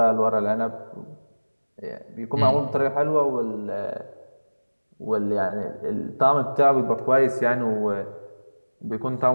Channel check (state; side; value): inverted; both; correlation -1.00